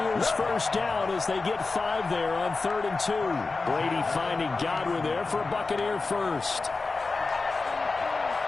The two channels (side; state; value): right; quieter; 3.9 dB